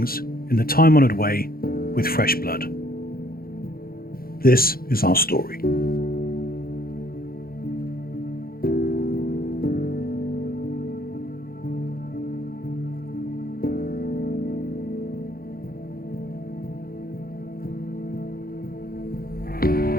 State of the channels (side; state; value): right; late; 0.43 ms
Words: in the time-honoured way with fresh blood. This is our story.